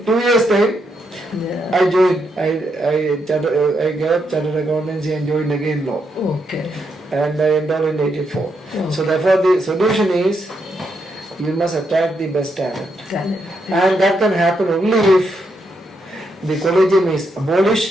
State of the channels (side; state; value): both; normal; correlation 0.80